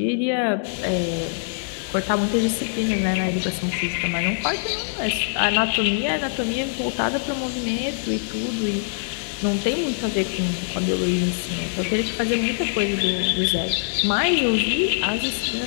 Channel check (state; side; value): silent; right; digital silence